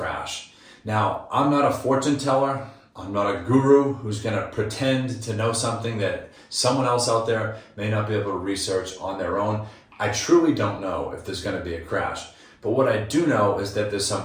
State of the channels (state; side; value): identical; both; correlation 1.00